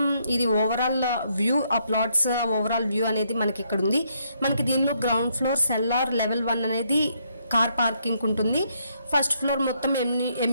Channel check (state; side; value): inverted; both; correlation -0.73